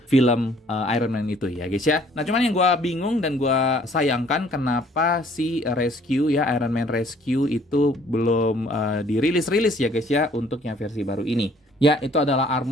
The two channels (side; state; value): both; normal; correlation 0.59